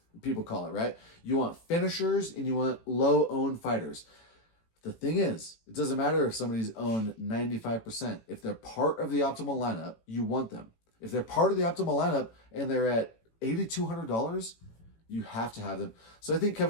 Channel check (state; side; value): late; right; 18 ms